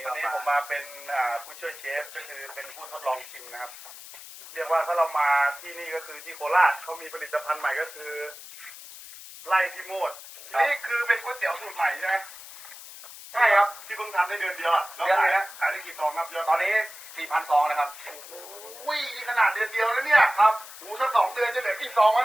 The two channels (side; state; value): left; noise; hiss, 15 dB below the sound